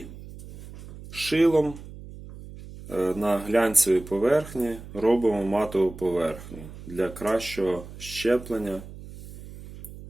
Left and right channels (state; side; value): noise; right; hum, 15 dB below the sound